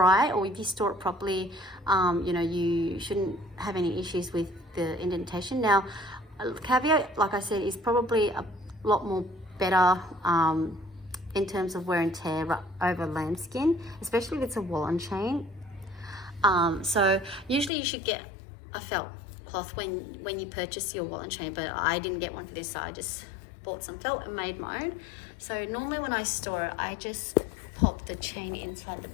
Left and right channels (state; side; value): drops out; right; at 17.7 s